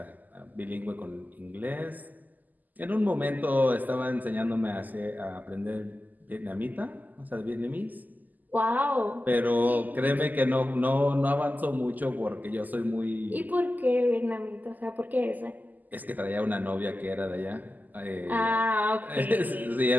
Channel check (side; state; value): left; late; 0.083 ms